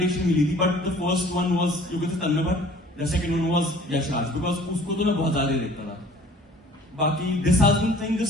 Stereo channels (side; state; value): both; normal; correlation 0.51